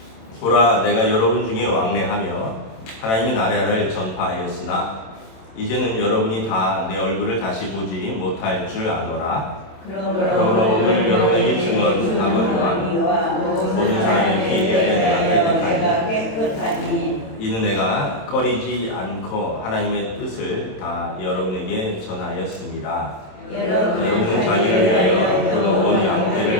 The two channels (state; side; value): late; right; 27 ms